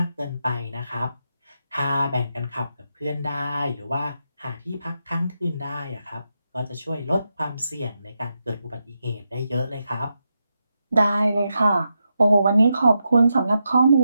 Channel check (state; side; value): inverted; both; correlation -0.86